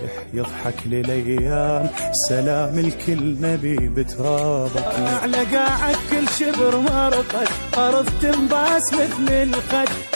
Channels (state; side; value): inverted; both; correlation -1.00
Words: يضحك للأيام، سلام الكل نبي بترابك. على قاعك كل شبر مرقد، أرض تنباس مثل الخد،